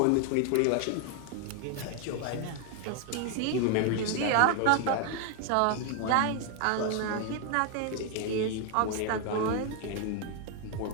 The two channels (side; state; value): both; different; correlation 0.01